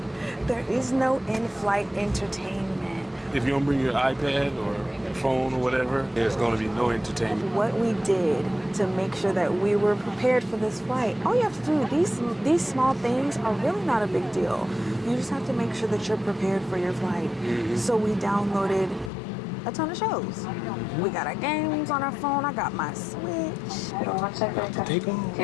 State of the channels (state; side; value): drops out; right; at 19.1 s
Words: is no in-flight entertainment. If you don't bring your iPad or phone or whatever, there's going to be no entertainment. What we did to make sure that we were prepared for this flight, all you have to do, these small things are really not a big deal. You just have to make sure that you're prepared for your flight. So we downloaded a ton of shows. We got our games on our phone. I got my Switch. Take off.